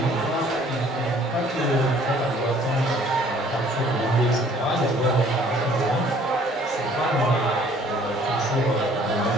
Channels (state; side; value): normal; both; correlation 0.57